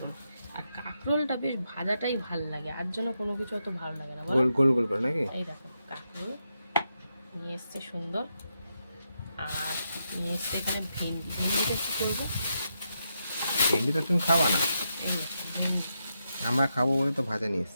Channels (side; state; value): both; inverted; correlation -0.84